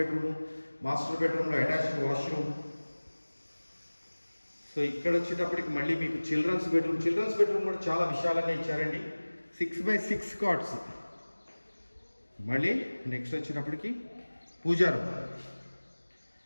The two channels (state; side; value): inverted; both; correlation -1.00